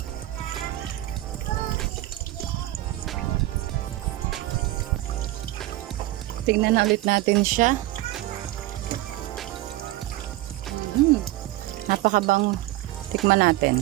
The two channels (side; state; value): left; quieter; 16.9 dB